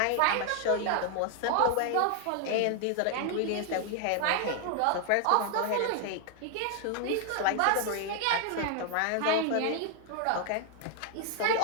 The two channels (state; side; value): different; both; correlation 0.00